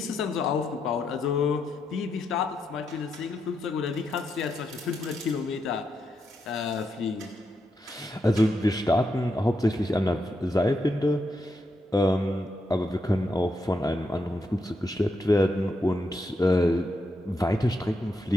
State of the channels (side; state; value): both; normal; correlation 0.82